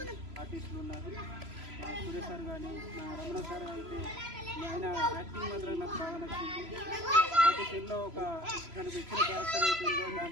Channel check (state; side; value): late; left; 3.0 ms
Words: ఆర్టిస్టులు ఉన్నారు. సురేష్ సార్ కానీ రమణ సార్ అయితే ఆయన యాక్టింగ్ మాత్రం నాకు బాగా నచ్చింది. ప్రతి సీన్లో ఒక తనకు ఇచ్చిన క్యారెక్టర్ అయితే ఉందో